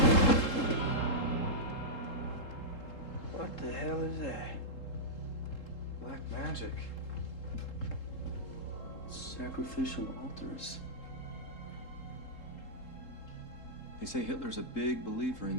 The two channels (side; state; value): right; late; 3.7 ms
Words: What the hell is that? Black magic. Sacrificial altars. They say Hitler's a big believer in